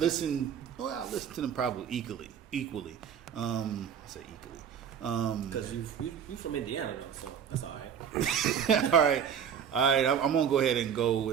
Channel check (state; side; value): quieter; left; 8.0 dB